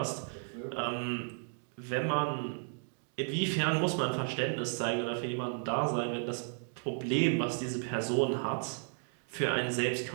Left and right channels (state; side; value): silent; left; 55 dB below the other